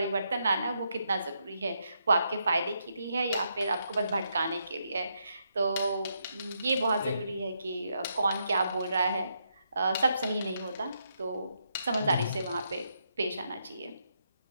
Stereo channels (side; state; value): both; inverted; correlation -0.79